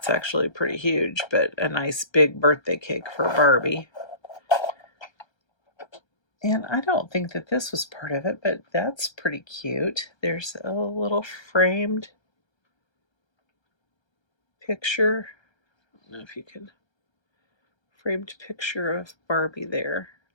actually pretty huge, but a nice big birthday cake for Barbie. And I don't think that this was part of it, but that's pretty cute. There's a little framed picture. I don't know if you can, framed picture of Barbie there.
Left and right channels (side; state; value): right; late; 1.3 ms